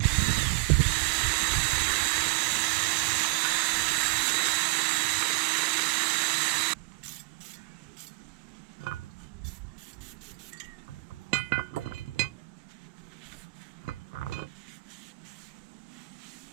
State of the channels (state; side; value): quieter; left; 27.1 dB